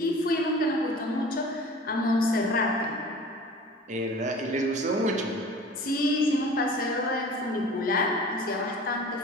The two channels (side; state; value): both; normal; correlation 0.42